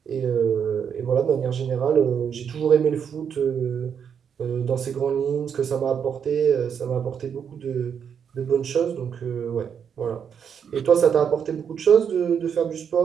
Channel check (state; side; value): quieter; left; 7.6 dB